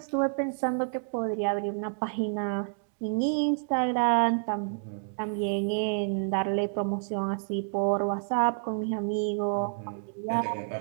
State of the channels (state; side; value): silent; left; digital silence